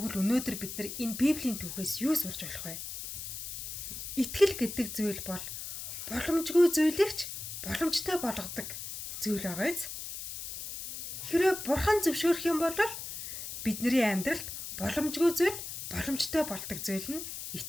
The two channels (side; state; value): left; noise; hiss, 8 dB below the sound